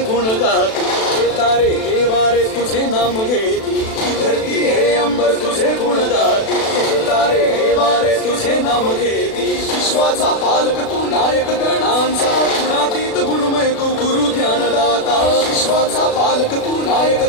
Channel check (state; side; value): late; right; 36 ms